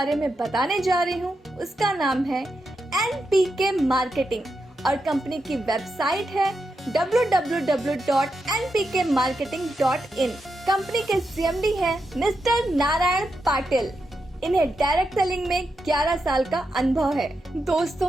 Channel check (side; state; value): both; normal; correlation 0.86